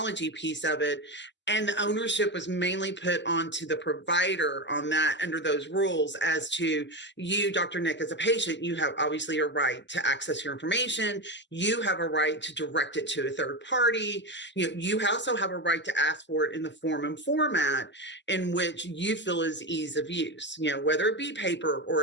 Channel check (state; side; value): normal; both; correlation 0.17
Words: piece of it. And the ownership was mainly put onto the provider on that under those rules as to you, Dr. Nick, as a patient, you have obviously a right to access your information. You have a right to direct it to a third party. You also have a right to ask for it in the form and format in which you feel is ease of use, whether it be paper